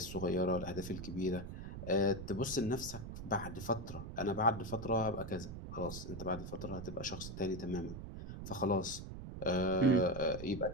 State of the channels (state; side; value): noise; right; rumble, 9 dB below the sound